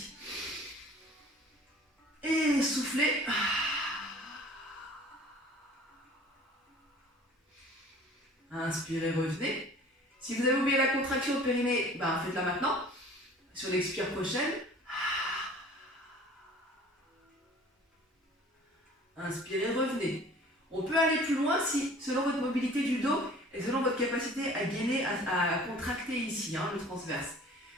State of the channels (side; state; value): both; normal; correlation 0.48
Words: Et soufflez. Inspirez, revenez. Si vous avez oublié la contraction au périnée, faites-la maintenant. Sur l'expire prochaine. Inspirez, revenez. On peut aller plus loin si, selon votre mobilité du dos et selon votre capacité à gainer, à contracter ici, le transverse.